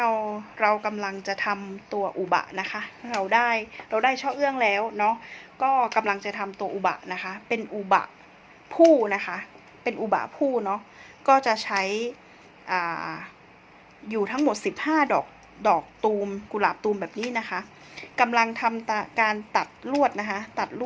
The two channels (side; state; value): both; identical; correlation 1.00